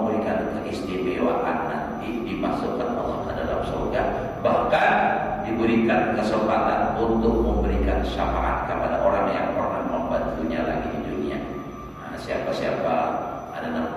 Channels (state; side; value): identical; both; correlation 1.00